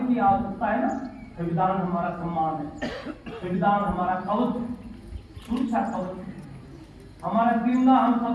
की आवश्यकता है ना, संविधान हमारा सम्मान है, संविधान हमारा कवच, सुरक्षा कवच, हमारा जिंदा हम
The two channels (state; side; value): identical; both; correlation 1.00